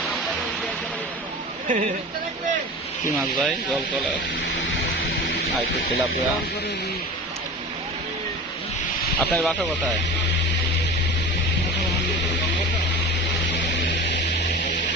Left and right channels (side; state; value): both; normal; correlation 0.33